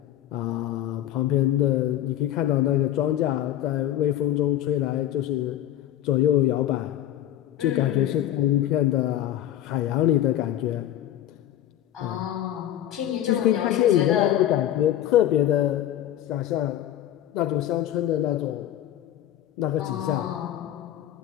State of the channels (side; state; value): right; quieter; 12.1 dB